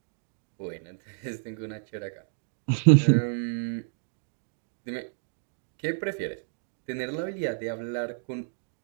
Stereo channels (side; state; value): left; silent; digital silence